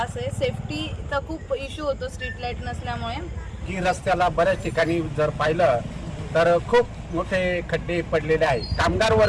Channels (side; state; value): both; identical; correlation 1.00